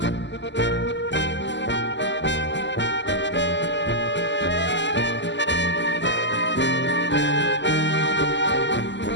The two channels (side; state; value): right; late; 0.53 ms